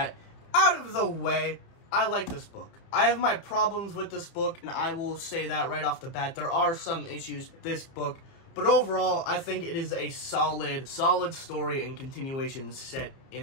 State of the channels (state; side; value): late; right; 30 ms